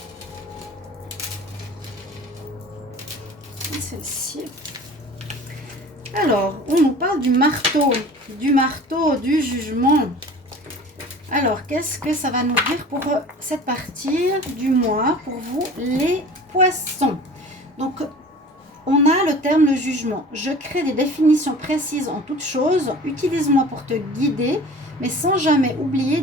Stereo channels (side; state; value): both; normal; correlation 0.42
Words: Celle-ci. Alors, on nous parle du marteau, du jugement. Alors, qu'est-ce que ça va nous dire pour cette partie du mois, pour vous, les poissons? Donc, on a le terme le jugement. Je crée des définitions précises en toutes choses. Utilise-moi pour te guider, mais sans jamais oublier